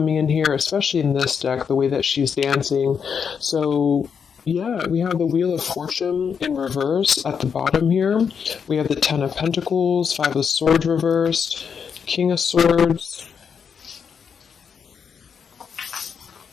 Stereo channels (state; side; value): quieter; right; 6.7 dB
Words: in here, especially in this deck, the way that she's dancing. So yeah, we have the Wheel of Fortune in reverse at the bottom here. We have the Ten of Pentacles, Five of Swords reversed, King of Swords.